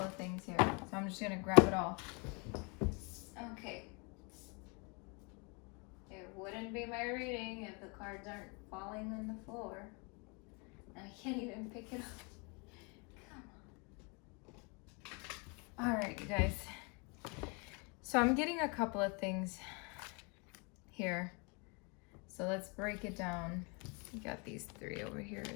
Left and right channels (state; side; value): quieter; right; 32.3 dB